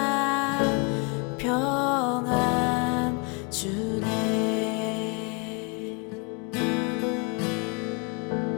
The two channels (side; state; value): right; quieter; 33.1 dB